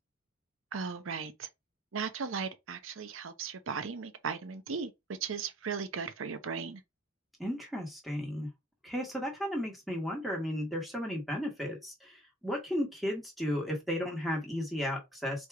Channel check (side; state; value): both; normal; correlation 0.53